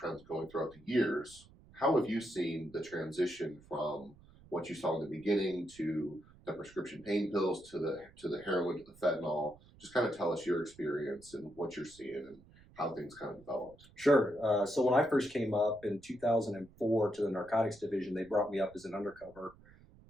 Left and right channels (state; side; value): noise; right; rumble, 24 dB below the sound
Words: going throughout the years. How have you seen the transition from what you saw in the beginning to the prescription pain pills to the heroin to the fentanyl? Just kind of tell us your experience and what you're seeing and how things kind of developed. Sure. So when I first came up in 2004 to the narcotics division, they brought me up as an undercover